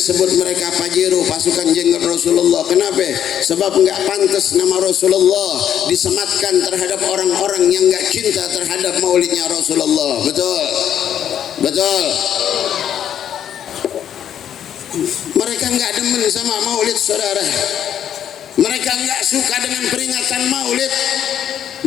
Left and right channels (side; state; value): right; quieter; 9.7 dB